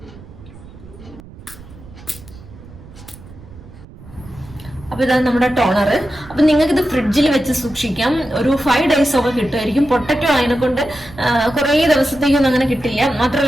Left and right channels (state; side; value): noise; right; rumble, 19 dB below the sound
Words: അപ്പൊ ഇതാണ് നമ്മുടെ ടോണർ. അപ്പൊ നിങ്ങൾക്ക് ഇത് ഫ്രിഡ്ജിൽ വെച്ച് സൂക്ഷിക്കാം. ഒരു 5 days ഒക്കെ കിട്ടുമായിരിക്കും. പൊട്ടറ്റോ അതിനെ കൊണ്ട് കുറെ ദിവസത്തേക്കൊന്നും അങ്ങനെ കിട്ടില്ല.